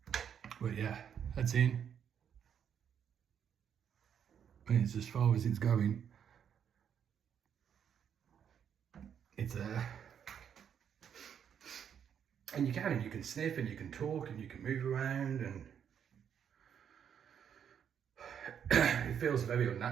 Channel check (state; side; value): quieter; left; 8.3 dB